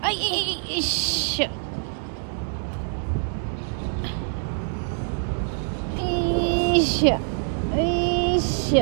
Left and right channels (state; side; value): silent; left; digital silence